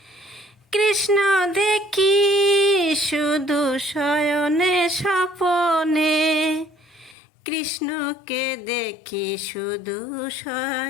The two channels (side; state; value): right; drops out; at 7.2 s